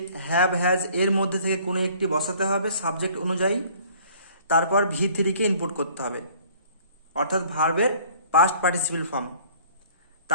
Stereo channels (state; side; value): inverted; both; correlation -0.53